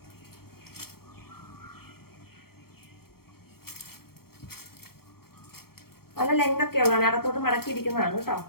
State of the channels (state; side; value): late; right; 0.94 ms